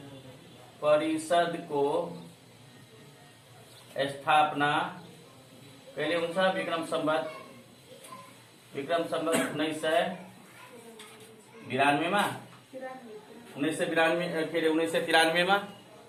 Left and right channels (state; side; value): identical; both; correlation 1.00